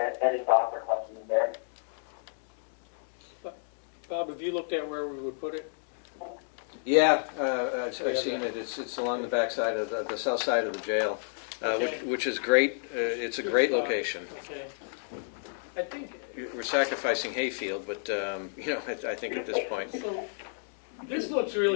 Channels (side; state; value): right; silent; digital silence